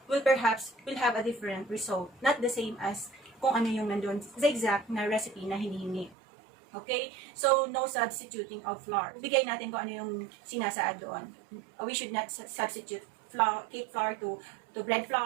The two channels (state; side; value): drops out; left; at 6.2 s